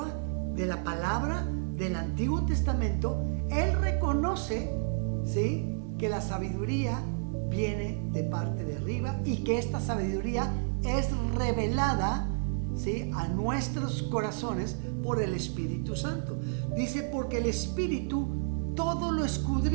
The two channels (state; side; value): silent; left; digital silence